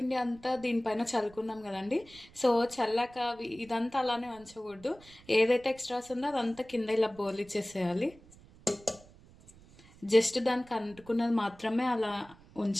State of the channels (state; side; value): noise; right; rumble, 24 dB below the sound